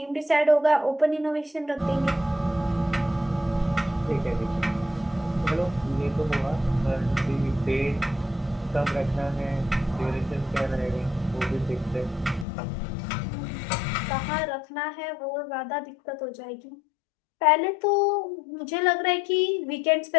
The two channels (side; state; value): right; drops out; at 12.5 s